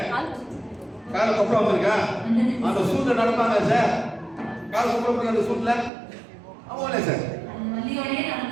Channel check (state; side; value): drops out; left; at 5.9 s